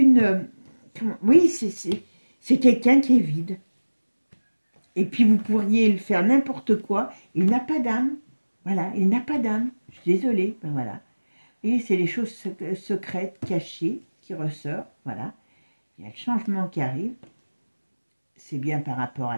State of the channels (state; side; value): inverted; both; correlation -1.00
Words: oui, c'est quelqu'un qui est vide. Et puis vous pourriez le faire n'importe quoi. Il n'a pas d'âme. Voilà, il n'a pas d'âme. Je suis désolée. Ben voilà. Et c'est les choses secrètes, cachées, qui ressortent. Voilà. Il y a le changement qui arrive. C'est bien par rapport à